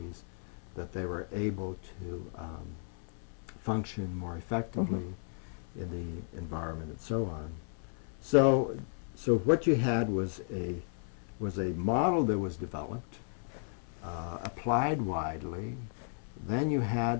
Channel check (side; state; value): right; silent; 55 dB below the other